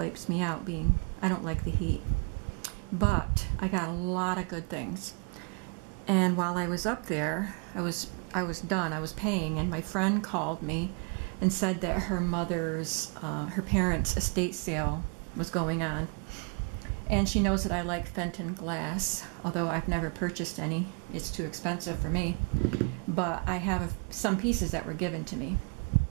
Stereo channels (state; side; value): quieter; left; 37.0 dB